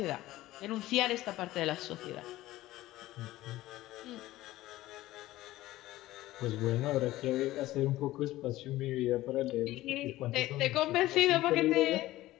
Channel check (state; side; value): quieter; right; 16.3 dB